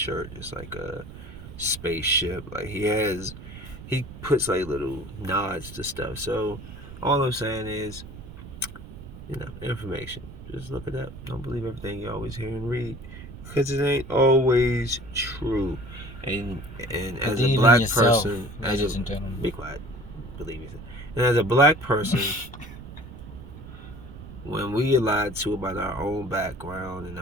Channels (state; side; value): noise; right; rumble, 14 dB below the sound